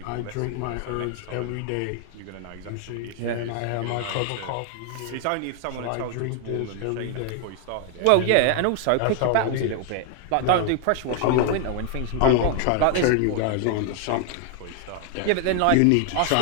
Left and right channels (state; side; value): different; both; correlation 0.00